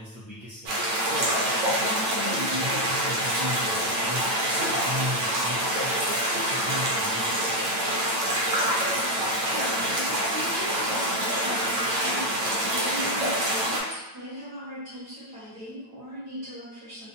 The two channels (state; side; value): late; left; 8.9 ms